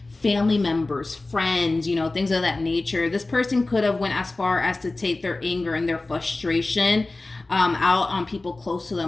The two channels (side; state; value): right; quieter; 3.1 dB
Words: family members, friends, you know, things of that nature. This person could have went as far as to take their anger and their frustration out on people close to